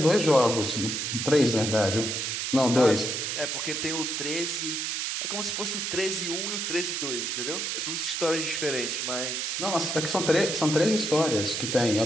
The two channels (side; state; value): right; noise; hiss, 2 dB below the sound